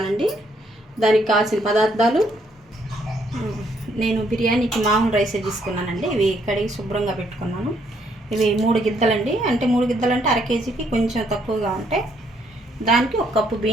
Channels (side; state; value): both; normal; correlation 0.70